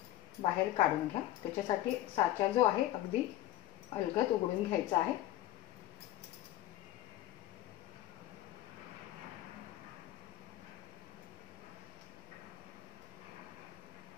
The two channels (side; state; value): right; quieter; 14.3 dB